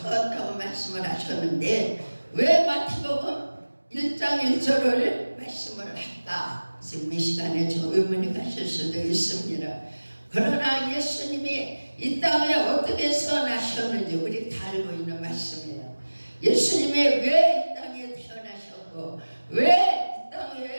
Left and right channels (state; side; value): inverted; both; correlation -1.00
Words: 말씀을 하셨는데 왜 마태복음 1장 1절을 말씀을 할까? 지금 이 시간에 좀 의문이 가실 수도 있습니다. 그러나 예수님이 이 땅에 어떻게 태어나셨는지 우리 다 알고 있는 말씀이에요. 예수님이 왜 이 땅에 태어나셨고 왜 이